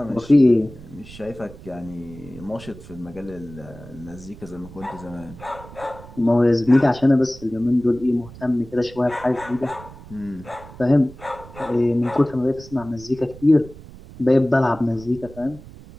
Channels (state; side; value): noise; right; rumble, 18 dB below the sound